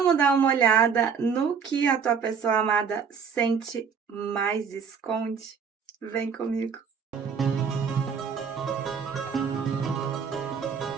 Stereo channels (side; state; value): left; quieter; 6.4 dB